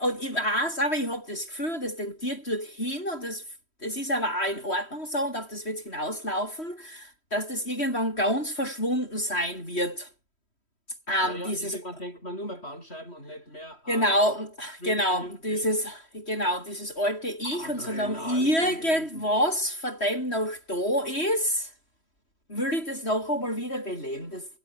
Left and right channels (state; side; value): late; right; 3.1 ms